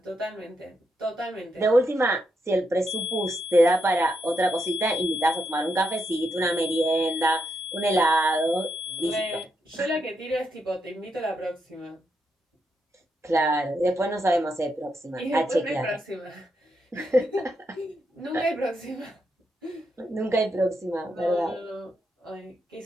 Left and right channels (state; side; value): normal; both; correlation 0.81